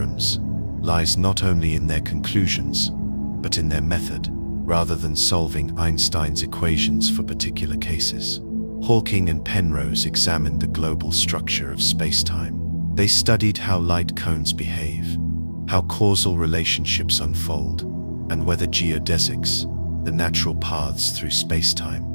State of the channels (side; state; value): both; inverted; correlation -1.00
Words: lies not only in their conclusions, but in their method. Rather than solving Einstein's equations for particular cases, Hawking and Penrose examined the global structure of space-time. They studied how light cones behave, how causal relationships unfold, and whether geodesics, the natural paths through